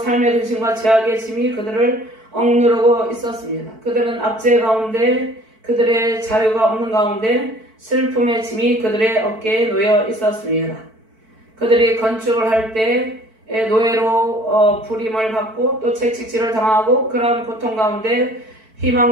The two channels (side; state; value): left; late; 4.5 ms